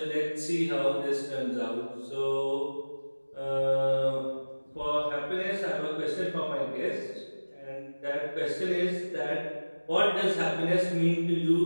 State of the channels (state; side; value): inverted; both; correlation -1.00